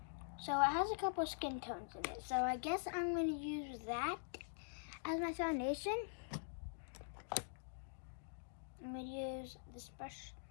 So it has a couple skin tones in it. So I guess I'm going to use that as my foundation. I'm going to use this brush.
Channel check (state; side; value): silent; right; digital silence